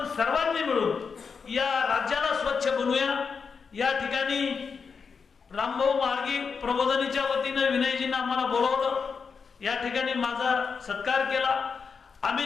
सर्वांनी मिळून या राज्याला स्वच्छ बनवूया. या ठिकाणी रामभाऊ म्हाळगी प्रबोधिनीच्या वतीनं विनयजींना आम्हाला बोलवलं, या ठिकाणी माझा सत्कार केला. आम्ही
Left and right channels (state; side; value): quieter; right; 5.6 dB